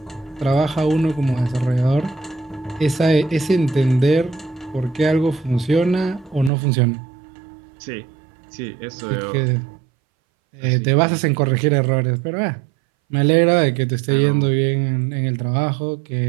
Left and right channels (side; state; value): left; drops out; at 6.5 s